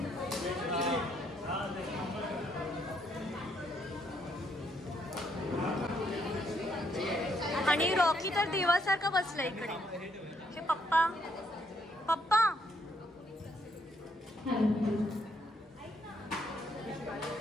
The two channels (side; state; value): both; normal; correlation 0.72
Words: आणि रॉकी तर देवासारखा बसला इकडे. हे पप्पा पप्पा